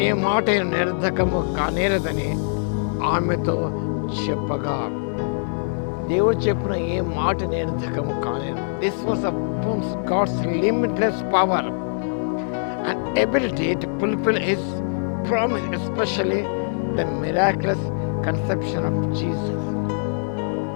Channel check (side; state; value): right; silent; 63 dB below the other